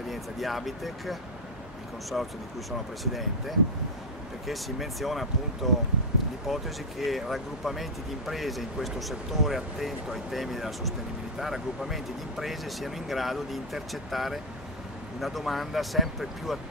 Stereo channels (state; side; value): normal; both; correlation 0.01